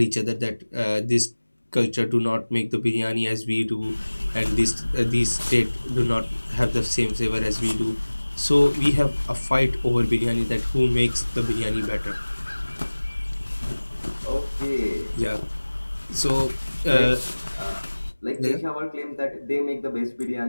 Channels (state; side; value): inverted; both; correlation -1.00